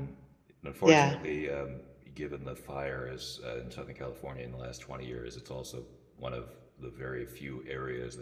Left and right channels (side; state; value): both; identical; correlation 1.00